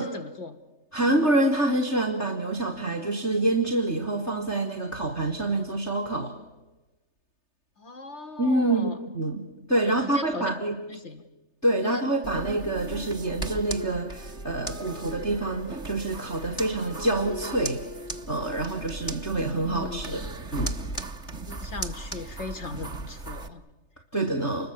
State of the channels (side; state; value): right; late; 3.3 ms